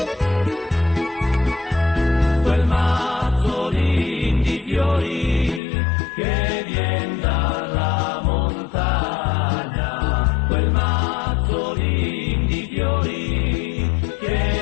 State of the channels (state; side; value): drops out; right; at 5.6 s